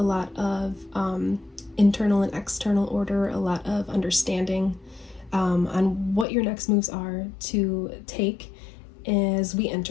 lot of internal and external order, a lot of understanding on what your next moves are to take as we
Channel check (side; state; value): right; drops out; at 6.2 s